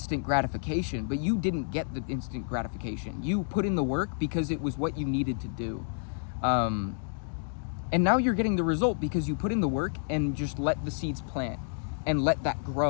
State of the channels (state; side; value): silent; right; digital silence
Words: gratification, but you didn't get the instant gratification. You put in the work because it was what you needed to do. And now you're getting the result because you put in the work and just let the seeds plant and let that